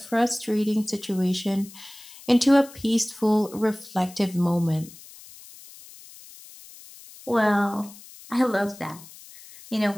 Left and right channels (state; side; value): noise; left; hiss, 19 dB below the sound